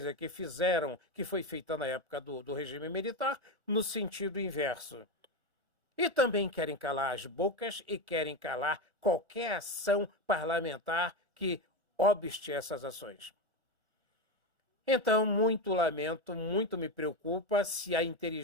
que fizeram, que foi feita na época do regime militar, no sentido inverso. E também querem calar as bocas e querem calar qualquer ação parlamentar que obste essas ações. Então, muito lamento, muito me preocupa se a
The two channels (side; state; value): left; late; 1.4 ms